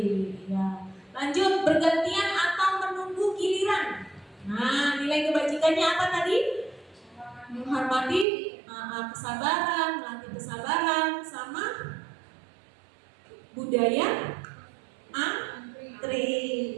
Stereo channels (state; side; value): drops out; left; at 8.2 s